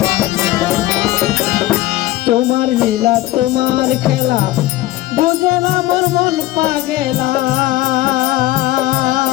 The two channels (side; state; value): right; quieter; 16.3 dB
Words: তোমার লীলা তোমার খেলা বুঝে না মোর মন পাগেলা,